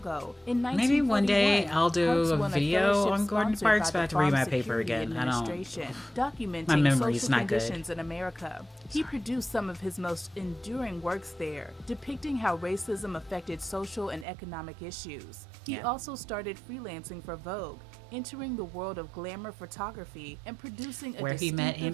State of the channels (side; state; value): left; drops out; at 14.2 s